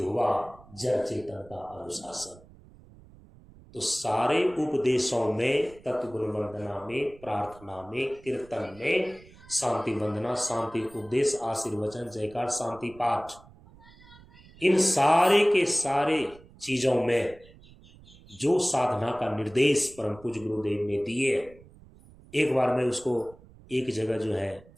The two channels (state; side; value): noise; right; rumble, 23 dB below the sound